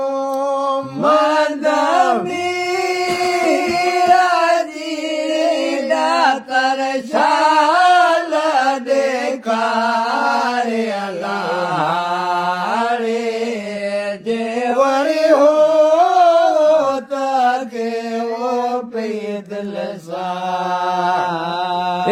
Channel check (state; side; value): identical; both; correlation 1.00